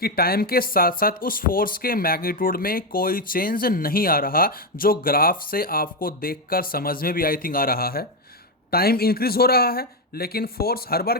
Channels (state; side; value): normal; both; correlation 0.07